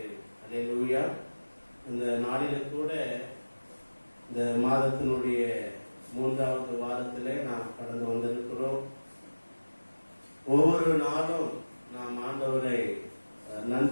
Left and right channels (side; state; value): both; inverted; correlation -1.00